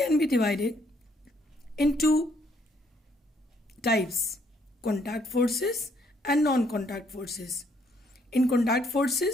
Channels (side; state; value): both; normal; correlation 0.68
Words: be divided into types: contact forces and non-contact forces. In contact